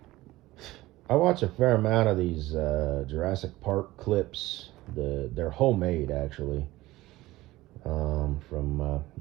I watch a fair amount of these Jurassic Park clips. They're homemade actually, from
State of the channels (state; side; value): quieter; left; 18.0 dB